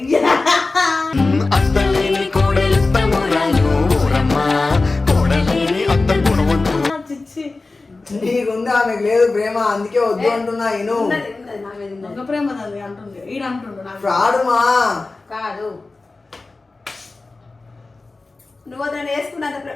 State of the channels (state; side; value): quieter; right; 3.5 dB